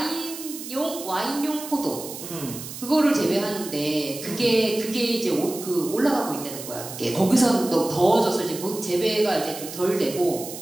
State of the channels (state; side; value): noise; right; hiss, 11 dB below the sound